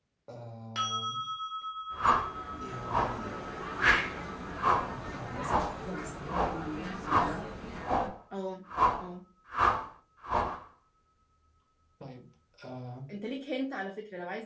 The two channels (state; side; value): identical; both; correlation 1.00